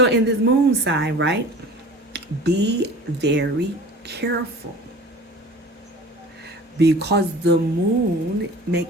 in this Moon sign, right, be very careful, because the moon may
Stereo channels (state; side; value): normal; both; correlation 0.42